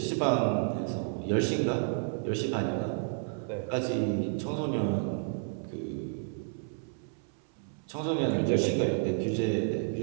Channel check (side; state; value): left; silent; 57 dB below the other